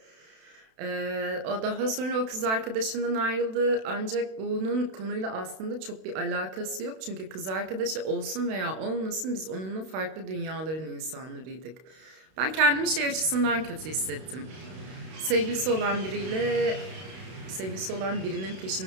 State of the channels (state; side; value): late; left; 32 ms